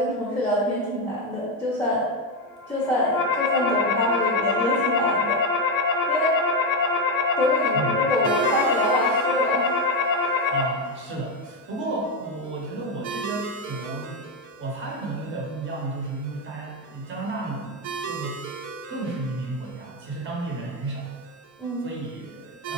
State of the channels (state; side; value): normal; both; correlation 0.09